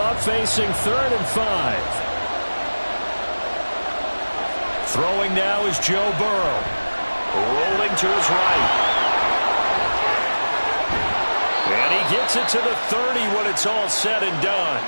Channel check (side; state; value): both; inverted; correlation -1.00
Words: up facing 3rd and 5. Throwing now is Joe Burrow. Rolling to his right. And he gets it to the 30 when it's all said and done.